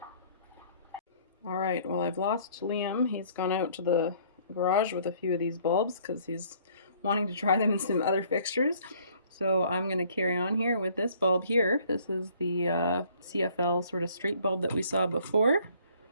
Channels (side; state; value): both; inverted; correlation -0.59